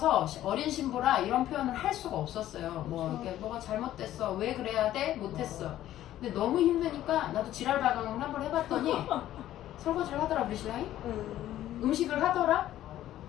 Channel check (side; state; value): right; quieter; 13.1 dB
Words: 어린 신부라 이런 표현을 할 수가 없었어요. 이렇게 뭐가 잘못됐어. 왜 그래야 돼? 못했어. 근데 너무 힘드니까 나도 지랄 발광을 한번 해봤더니 설거지를 하더라 우리 신랑이. 음식을 하더라.